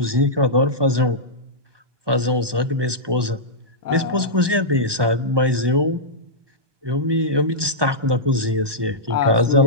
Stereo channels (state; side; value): late; left; 1.2 ms